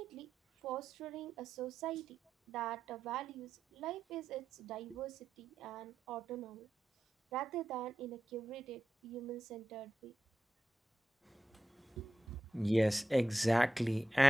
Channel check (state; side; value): normal; both; correlation 0.90